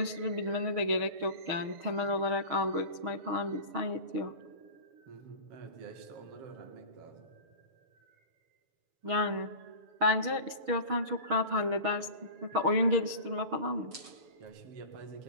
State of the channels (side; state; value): left; late; 7.0 ms